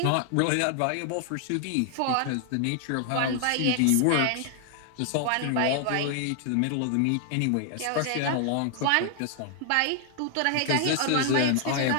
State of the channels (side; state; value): both; different; correlation 0.00